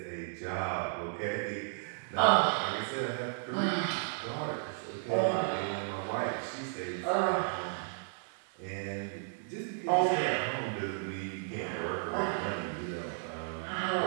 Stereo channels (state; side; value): silent; left; digital silence